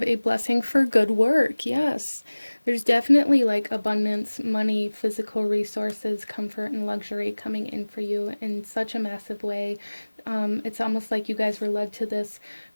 a blessing for good work. Yes, there's definitely like abundance, money, physical resources, comfort, and luxury coming in for you in such a massive way. It's almost like you guys were led to this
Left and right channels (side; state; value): both; inverted; correlation -1.00